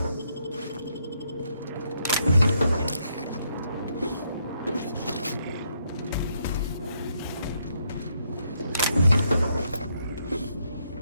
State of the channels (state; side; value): inverted; both; correlation -0.75